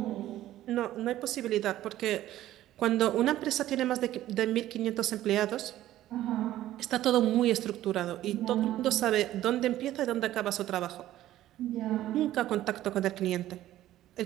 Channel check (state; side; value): quieter; left; 13.9 dB